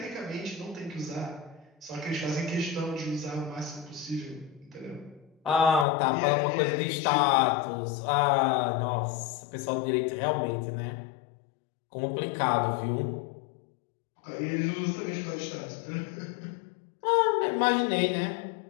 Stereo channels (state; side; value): drops out; right; at 5.9 s